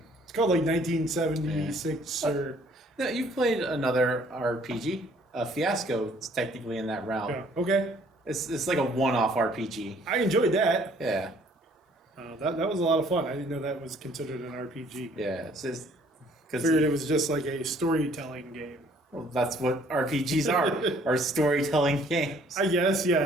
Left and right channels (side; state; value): both; normal; correlation 0.59